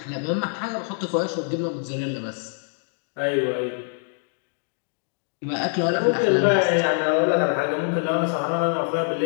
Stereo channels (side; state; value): right; silent; 56 dB below the other